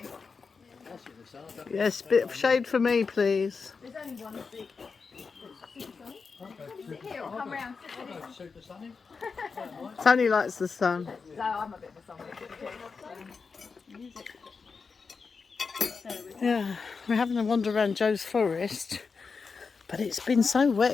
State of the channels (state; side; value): quieter; right; 5.0 dB